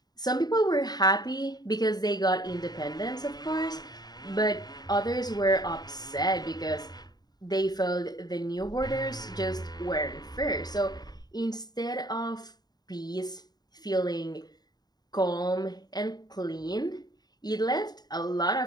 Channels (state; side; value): late; right; 0.20 ms